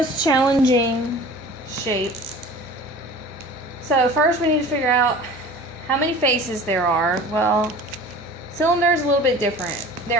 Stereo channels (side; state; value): both; normal; correlation 0.42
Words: challenging shape. So first we need to figure out how many faces there are. Well, cylinder is a little bit different.